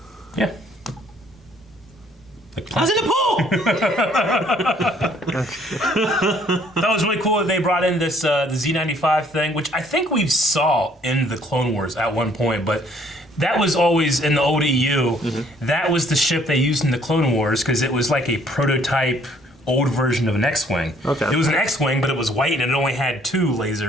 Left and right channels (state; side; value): normal; both; correlation 0.62